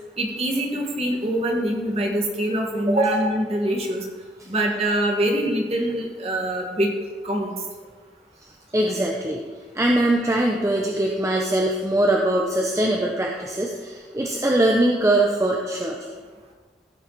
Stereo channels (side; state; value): both; normal; correlation 0.68